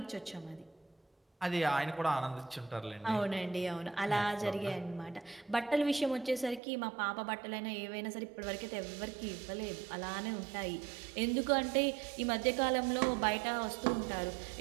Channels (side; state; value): left; drops out; at 6.6 s